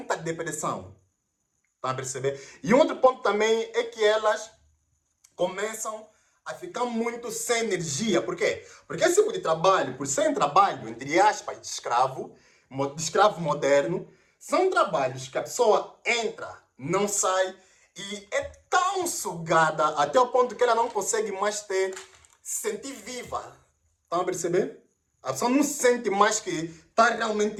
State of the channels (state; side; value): identical; both; correlation 1.00